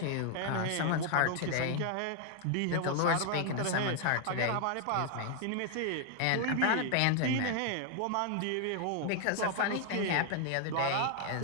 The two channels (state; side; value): different; both; correlation 0.00